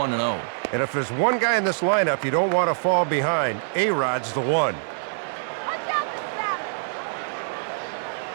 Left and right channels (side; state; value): left; silent; digital silence